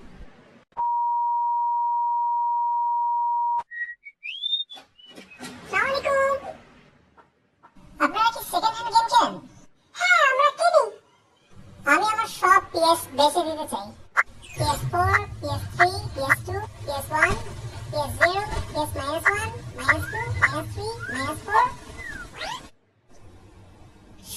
আসসালামু আলাইকুম। আপনারা কি সেকেন্ড হ্যান্ড গেম খেলেন? হ্যাঁ, আমরা কিনি। আমি আমার সব PS বেচে দিতে চাই। PS4, PS3, PS2, PS1, PS0, PS-1, -2, -3, -4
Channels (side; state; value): both; identical; correlation 1.00